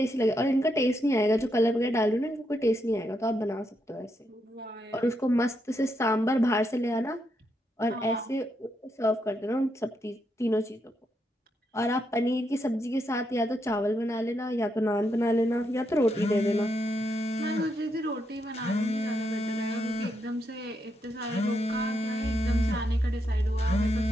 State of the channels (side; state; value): both; normal; correlation 0.80